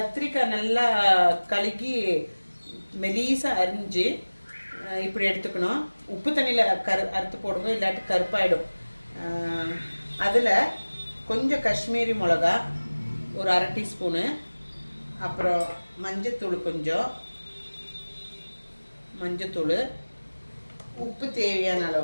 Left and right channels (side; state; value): both; inverted; correlation -1.00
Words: நல்லா கழுகி மெலீஸாக அரிஞ்சு இப்படி எடுத்துக்கணும். உப்பு தண்ணியில் அறுத்து போடுங்க, இல்லாட்டி கருப்பாயிடும். அதில் கொஞ்சம் காஷ்மீரி மிளகா ஒரு அரை டீஸ்பூனு, அப்புறம் மஞ்சத்தூள், கொஞ்சம் மஞ்சத்தூள், உப்பு தேவையான